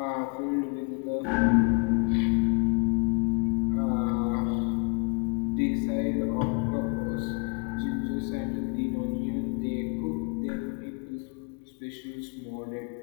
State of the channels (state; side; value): quieter; right; 33.6 dB